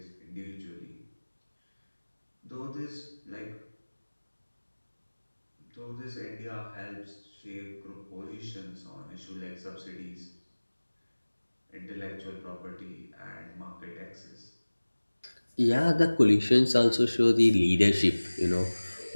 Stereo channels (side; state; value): both; inverted; correlation -1.00